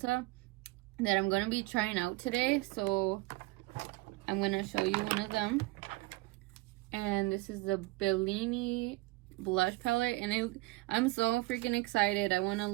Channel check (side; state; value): left; quieter; 21.5 dB